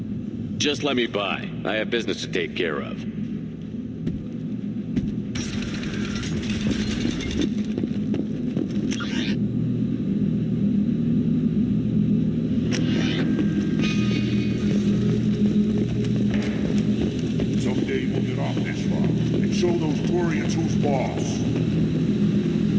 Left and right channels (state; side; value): identical; both; correlation 1.00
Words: Just let me by. I have business to take care of. Someday we'll get off this rock and show those Quarians who's boss.